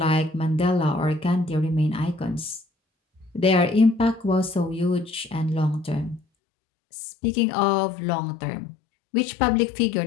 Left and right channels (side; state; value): right; drops out; at 6.2 s